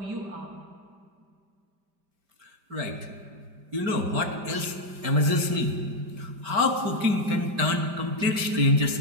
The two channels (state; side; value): late; left; 5.1 ms